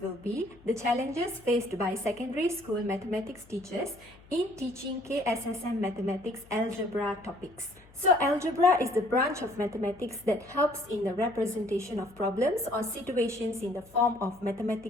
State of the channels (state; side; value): noise; left; hum, 26 dB below the sound